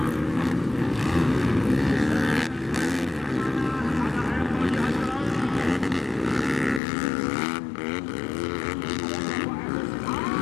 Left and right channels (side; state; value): right; drops out; at 6.8 s